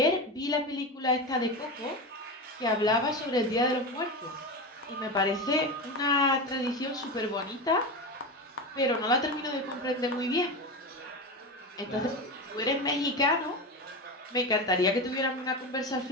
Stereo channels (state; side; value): normal; both; correlation 0.21